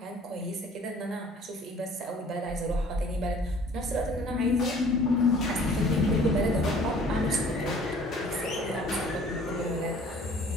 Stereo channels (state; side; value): normal; both; correlation 0.52